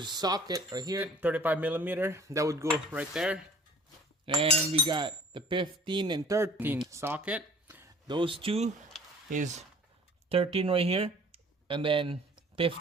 socket right here, 35mm. That would go right there. And we got the 15 and 13 socket. Those two is 13 right here. And then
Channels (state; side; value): normal; both; correlation 0.50